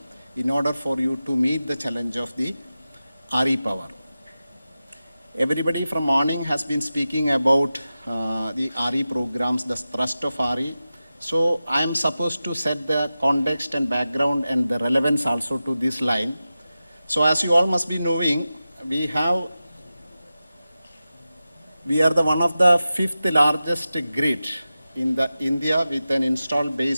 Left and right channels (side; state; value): both; inverted; correlation -0.94